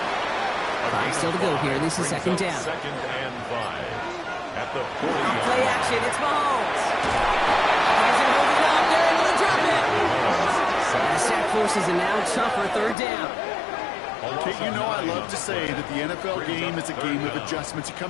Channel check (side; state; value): right; drops out; at 13.0 s